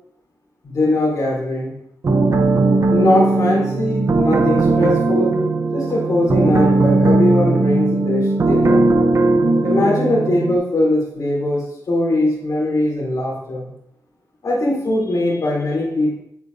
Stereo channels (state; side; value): normal; both; correlation 0.84